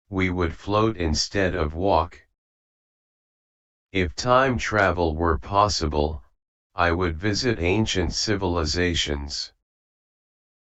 we would float instead of walk. If time travel were possible, I would visit ancient civilizations.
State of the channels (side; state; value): both; identical; correlation 1.00